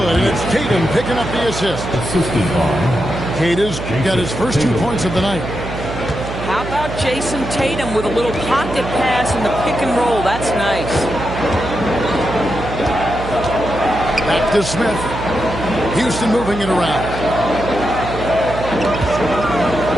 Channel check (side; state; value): right; noise; hum, 8 dB below the sound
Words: and it's Tatum picking up the assist. Assisted by Tatum's got his first 2 points of the night. How about Jason Tatum with a little pocket pass in the pick and roll? That's nice. Back to Smith. Houston moving it around.